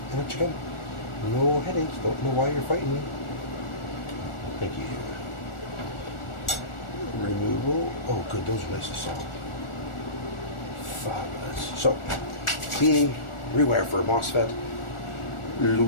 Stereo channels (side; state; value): right; late; 1.4 ms